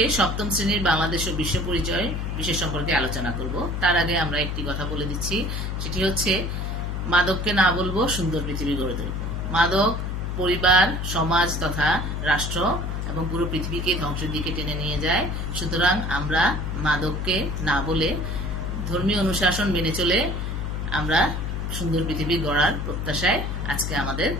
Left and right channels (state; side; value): noise; left; hum, 3 dB below the sound